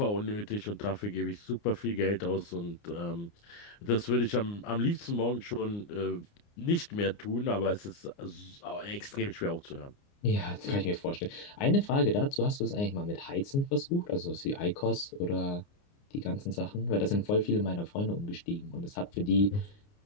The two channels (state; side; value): late; right; 29 ms